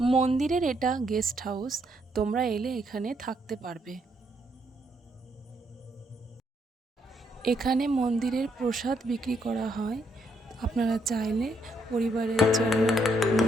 মন্দিরের এটা গেস্ট হাউস। তোমরা এলে এখানে থাকতে পারবে। এখানে মন্দিরের প্রসাদ বিক্রি করা হয়। আপনারা চাইলে পরিবারের জন্য,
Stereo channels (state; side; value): normal; both; correlation 0.73